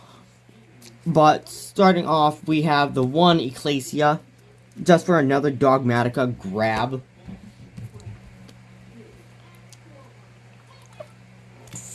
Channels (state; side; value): identical; both; correlation 1.00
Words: But starting off, we have the one Ecclesia. Just for another Dogmatika grab.